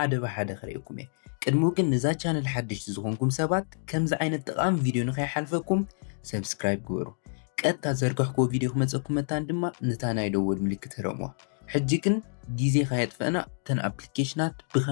ብሓደ ክሪአኩም እየ። ቅድሚ ግን ንዛ ቻነል ሓደሽቲ ዝኾንኩም ሰባት ከምዚ ዓይነት ጠቓሚ ቪድዮ ንኸይሓልፈኩም ሰብስክራይብ ግበሩ። ቀጥታ ዘርጋሕክዎ ቪድዮ ክመፀኩም መታን ድማ ነታ ናይ ደወል ምልክት ረምዋ። ሕጂ ግን ጊዜ ከየጥፈአና ተን ኣፕሊኬሽናት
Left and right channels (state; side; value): silent; right; digital silence